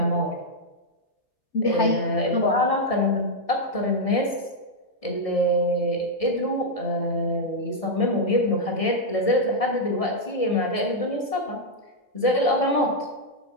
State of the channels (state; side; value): late; right; 1.7 ms